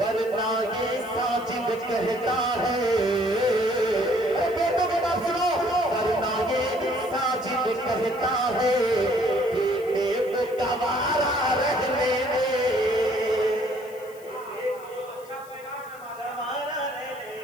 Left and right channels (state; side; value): noise; left; hiss, 24 dB below the sound